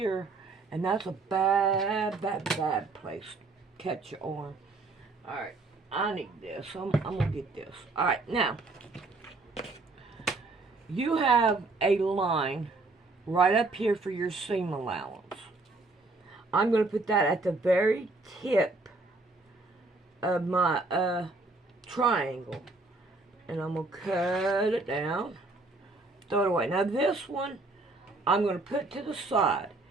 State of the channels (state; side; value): quieter; left; 3.4 dB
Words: and that's a bad place to cut your arm. Alright, I need this. I'm going to get this. Alright, now, you have a line right up here for your seam allowance. I'm going to put that at the very tip of my triangle. And I'm going to cut it down, throw it away. Now this one, I'm going to put to the side.